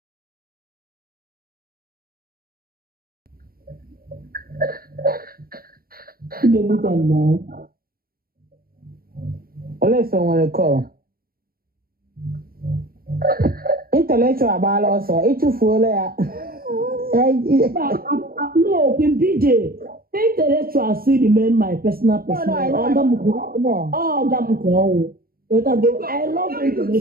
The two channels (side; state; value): left; late; 0.43 ms